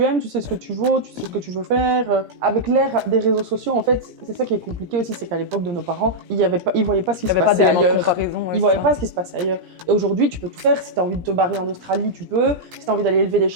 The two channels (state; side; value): late; left; 17 ms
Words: aimes, tu sais ce que tu vaux, tu sais ce que tu veux faire. Avec l'ère des réseaux sociaux, en fait, c'est ça qui est compliqué aussi, c'est qu'à l'époque de nos parents, ils voyaient pas ce qui se passait ailleurs. Ils voyaient pas ce qui se passait ailleurs. Et aujourd'hui, tu peux tout faire. Si t'as envie de te barrer en Australie, tu peux. Si t'as envie d'aller élever des